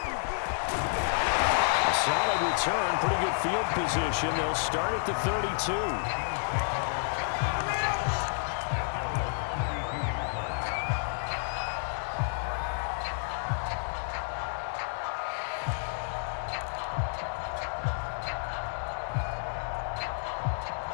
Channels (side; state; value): right; silent; digital silence